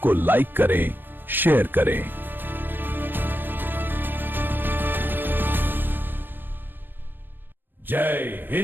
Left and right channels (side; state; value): left; late; 0.096 ms